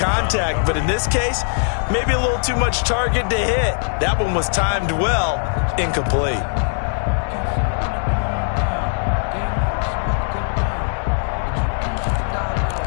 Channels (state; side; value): silent; right; 64 dB below the other